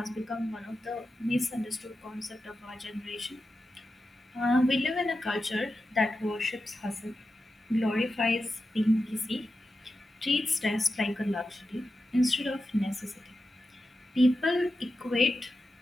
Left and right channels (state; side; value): normal; both; correlation 0.90